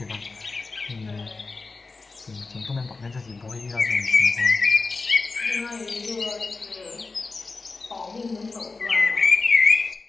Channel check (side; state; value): right; quieter; 3.9 dB